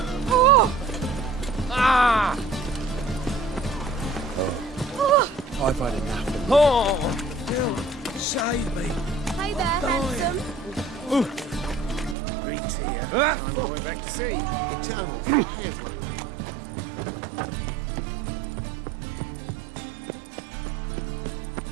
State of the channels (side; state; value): left; drops out; at 12.2 s